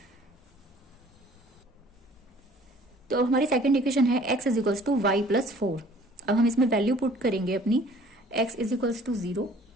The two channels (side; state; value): both; normal; correlation 0.53